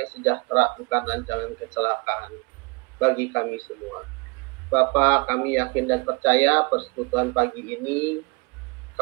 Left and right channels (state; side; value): quieter; left; 28.5 dB